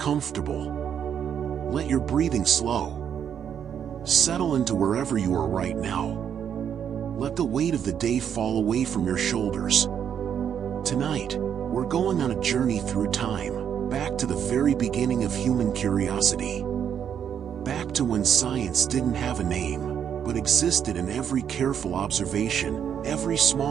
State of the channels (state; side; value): quieter; left; 8.5 dB